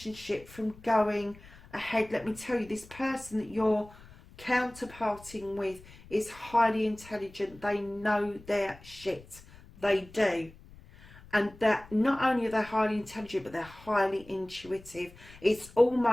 from going ahead. Let me tell you, this person that you're counterparting with is highly intelligent. They know their shit. They do. And that not only are they highly intelligent, but they're highly intuitive. It's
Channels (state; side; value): noise; left; rumble, 21 dB below the sound